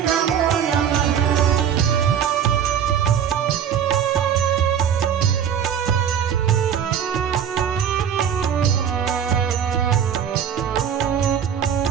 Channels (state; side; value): quieter; left; 8.5 dB